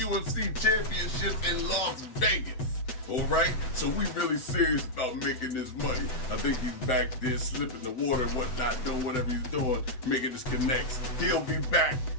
Championship in Las Vegas. All right? So we really serious about making this money. I think he's back there slipping the water and whatnot, doing whatever he's doing, making his connects. He'll be back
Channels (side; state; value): right; late; 7.9 ms